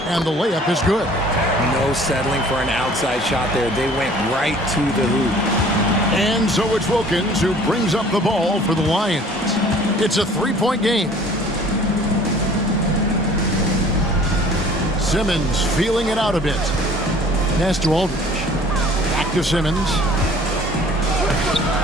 And the layup is good. No settling for an outside shot there. They went right to the hoop. And so it's Wilkins who brings up the ball for the Lions. It's a 3-point game. Simmons feeling it out a bit. Pass to Aldridge. Back to Simmons.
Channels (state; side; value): normal; both; correlation 0.51